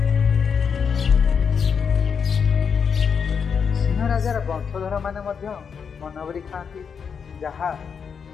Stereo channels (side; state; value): right; quieter; 6.5 dB